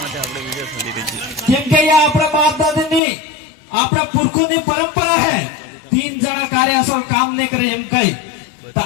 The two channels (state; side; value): drops out; right; at 3.0 s